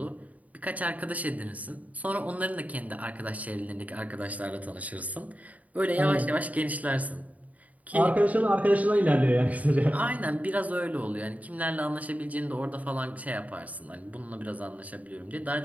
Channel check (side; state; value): left; late; 0.072 ms